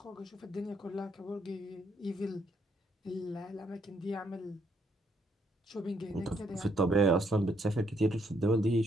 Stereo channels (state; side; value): normal; both; correlation 0.72